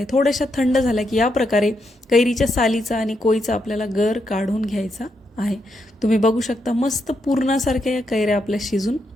थोड्याशा थंड झाल्या की या प्रकारे कैरीच्या सालीचा आणि कोईचा आपल्याला गर काढून घ्यायचा आहे. तुम्ही बघू शकता मस्त पूर्णासारख्या या कैऱ्या आपल्या शिजून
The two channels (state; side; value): normal; both; correlation 0.81